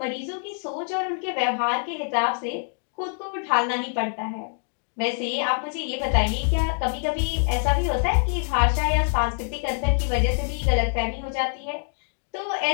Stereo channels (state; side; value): silent; right; digital silence